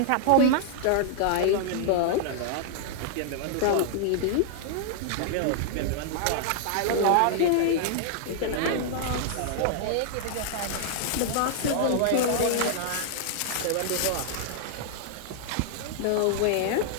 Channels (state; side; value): different; both; correlation -0.01